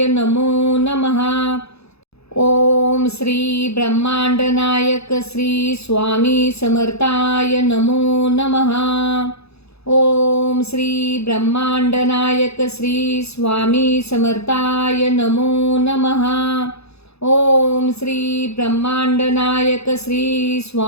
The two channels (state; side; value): late; right; 0.79 ms